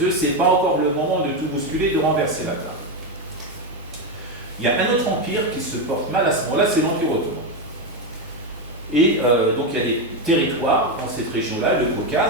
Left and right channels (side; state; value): both; normal; correlation 0.09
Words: œufs, c'est pas encore le moment de tout bousculer, de renverser la table. Il y a un autre empire qui se porte mal à ce moment-là, c'est l'Empire ottoman. Et donc il y a des territoires dans cette région-là, le